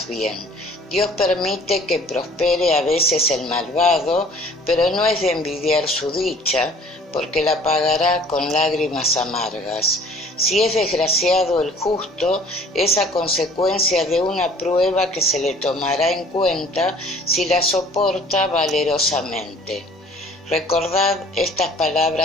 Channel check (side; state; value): both; normal; correlation 0.51